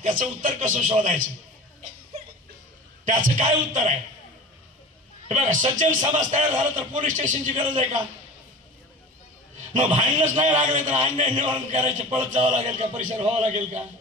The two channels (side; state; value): both; normal; correlation 0.36